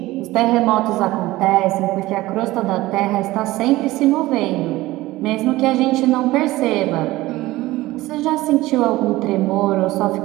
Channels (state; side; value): quieter; left; 18.1 dB